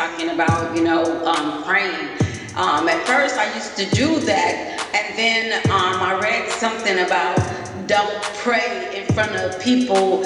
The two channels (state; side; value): identical; both; correlation 1.00